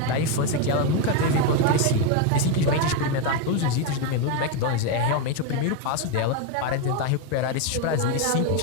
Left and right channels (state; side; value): different; both; correlation 0.02